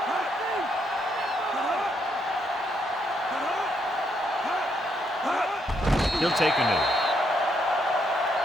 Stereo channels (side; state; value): both; normal; correlation 0.76